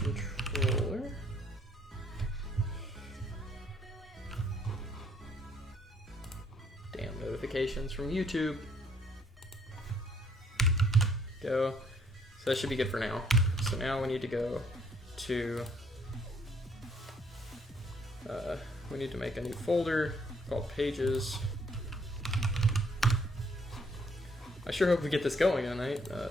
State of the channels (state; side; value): normal; both; correlation 0.66